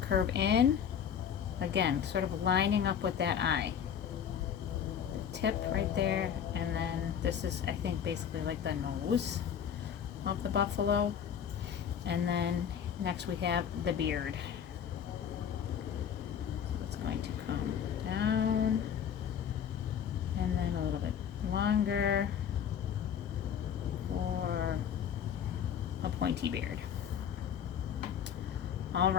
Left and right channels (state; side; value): quieter; right; 8.4 dB